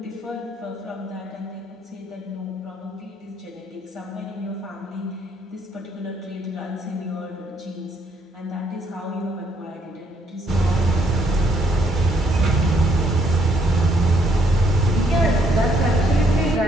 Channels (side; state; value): both; normal; correlation 0.70